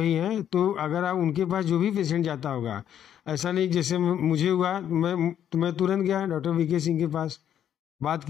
हैं। तो अगर आप उनके पास जो भी पेशेंट जाता होगा, ऐसा नहीं जैसे मुझे हुआ, मैं तुरंत गया डॉक्टर वीके सिंह के पास, बात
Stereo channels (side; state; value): right; quieter; 9.9 dB